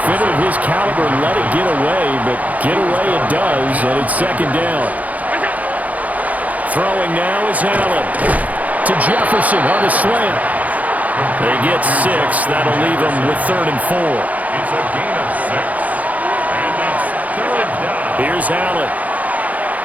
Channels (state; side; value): late; left; 0.075 ms